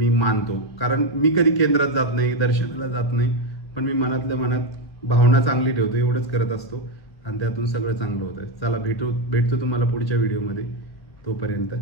मानतो. कारण मी कधी केंद्रात जात नाही, दर्शनाला जात नाही, पण मी मनातल्या मनात भावना चांगली ठेवतो, एवढंच करत असतो आणि त्यातून सगळं चांगलं होतं. चला भेटतो तुम्हाला पुढच्या व्हिडिओमध्ये. तोपर्यंत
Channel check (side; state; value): right; late; 1.9 ms